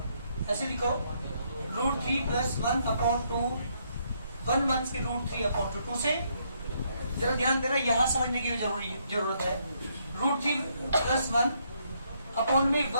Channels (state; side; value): inverted; both; correlation -0.73